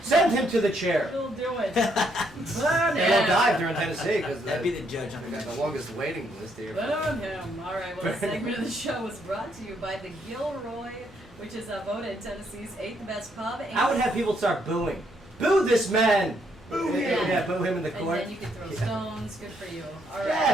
Send him to the chair. He'll do it. They won't dive during Tennessee because That'd be the judge. we got the longest waiting list here. Burn him. All right. Well, this segment of the show was brought to you by the Gilroy, which is voted Tennessee's 8th best pub. And I would have people start booing. Boo this man! Boo him! Yeah, boo him in the And court. then you can throw stones. Good for you. All right. Yeah,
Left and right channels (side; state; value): right; noise; hum, 28 dB below the sound